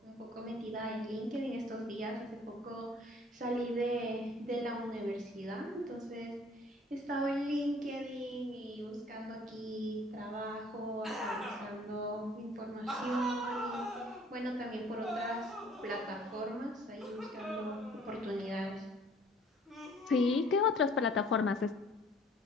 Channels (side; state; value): both; normal; correlation 0.55